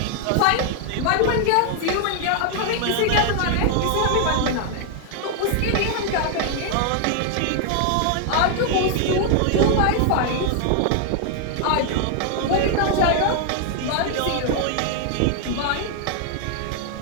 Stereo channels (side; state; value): both; different; correlation 0.00